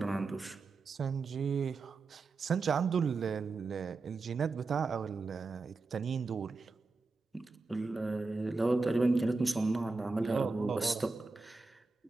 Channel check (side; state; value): left; quieter; 3.9 dB